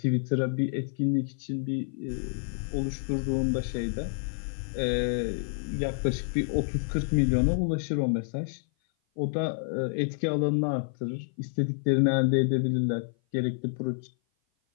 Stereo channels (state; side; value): silent; right; 56 dB below the other